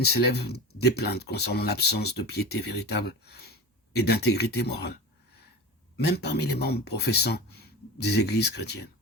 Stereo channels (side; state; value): both; normal; correlation 0.31